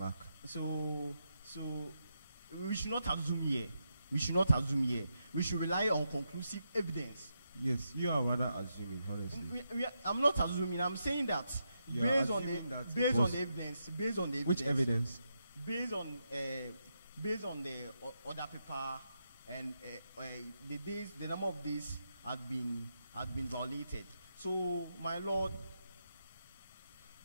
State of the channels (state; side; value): inverted; both; correlation -0.84